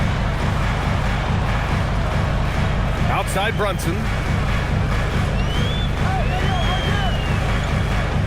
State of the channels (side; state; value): both; identical; correlation 1.00